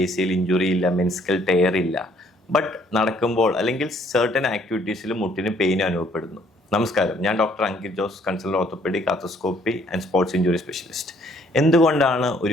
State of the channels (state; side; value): normal; both; correlation 0.64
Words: ACL ഇഞ്ചുറി ഇല്ല, മെനിസ്കൽ ടയർ ഇല്ല. ബട്ട് നടക്കുമ്പോൾ അല്ലെങ്കിൽ സർട്ടൻ ആക്ടിവിറ്റീസിൽ മുട്ടിന് പെയിൻ അനുഭവപ്പെടുന്നു. നമസ്കാരം, ഞാൻ doctor Ankit Jose, consultant orthopaedic, arthroscopy and sports injury specialist. എന്തുകൊണ്ടാണ്